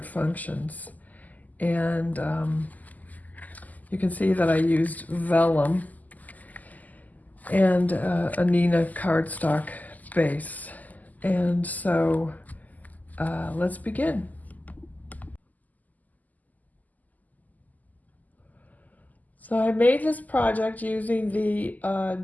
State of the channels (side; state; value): right; late; 0.080 ms